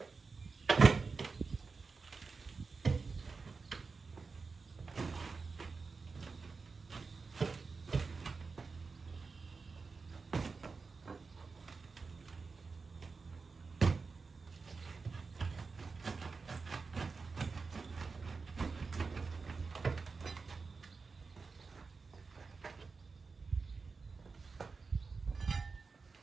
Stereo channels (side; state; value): left; quieter; 4.5 dB